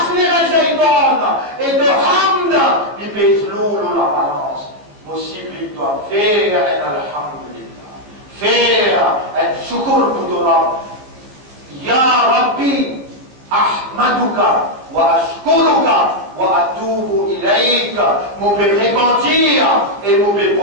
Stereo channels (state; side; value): late; left; 15 ms